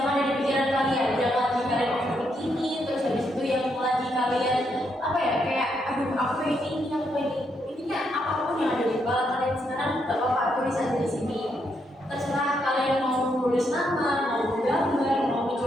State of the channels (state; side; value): normal; both; correlation 0.78